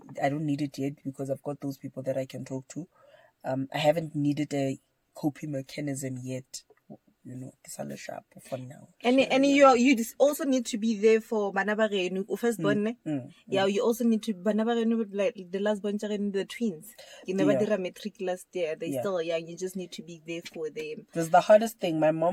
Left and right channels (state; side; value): identical; both; correlation 1.00